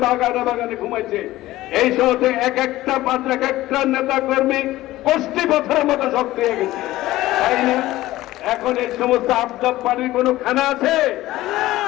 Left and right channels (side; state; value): right; quieter; 16.5 dB